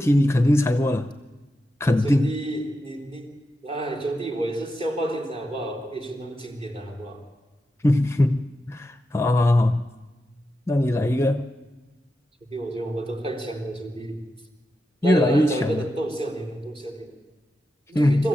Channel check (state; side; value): normal; both; correlation 0.89